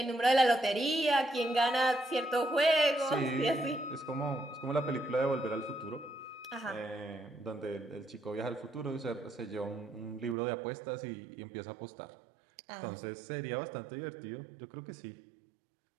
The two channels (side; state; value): left; drops out; at 10.4 s